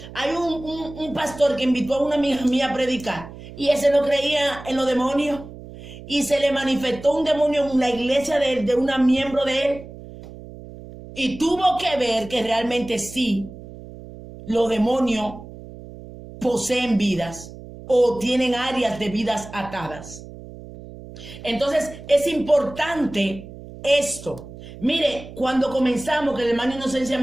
Hay un pastor que invitó a una amiga mía a predicar y ese no creía en los demonios y se le manifestó un demonio en la iglesia de una miembro de él y tuvo que ver que realmente sí, los demonios poseen vidas o tienen áreas de vidas atadas. Entonces es importante esto. Mire, cuando comenzamos, que el hermano Inocencia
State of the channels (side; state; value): right; noise; hum, 15 dB below the sound